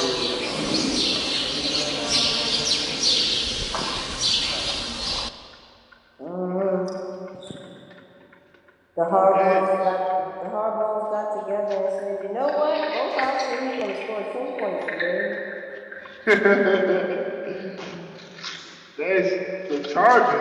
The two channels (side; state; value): both; identical; correlation 1.00